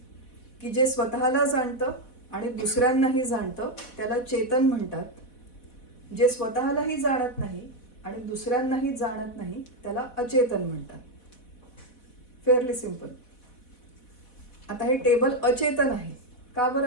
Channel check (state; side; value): late; right; 4.1 ms